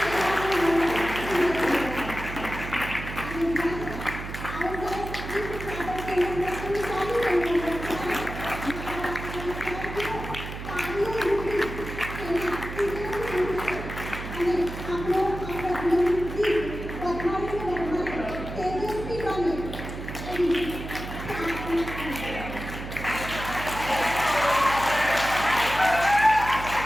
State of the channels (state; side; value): noise; right; hum, 9 dB below the sound